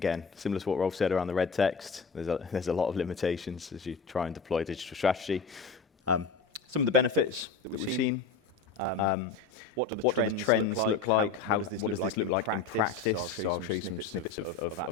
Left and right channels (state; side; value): quieter; right; 4.8 dB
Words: similar to what Rolf said around the red text, there's a lot of limitations as you try and deploy digital strategy. Some of the benefits that we've seen. What do the trends look like? How does this look like in practice? So I'll show you some snippets of